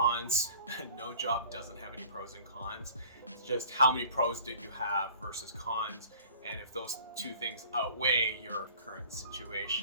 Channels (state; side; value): inverted; both; correlation -0.49